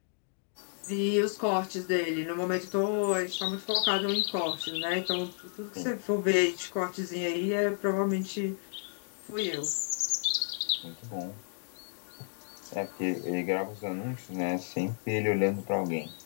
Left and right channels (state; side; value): silent; right; digital silence